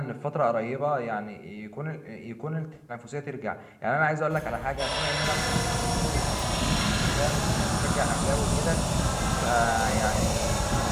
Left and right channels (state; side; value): identical; both; correlation 1.00